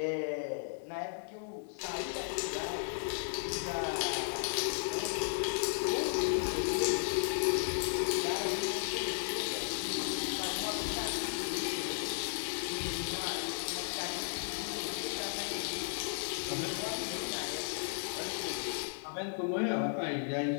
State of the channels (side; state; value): right; silent; digital silence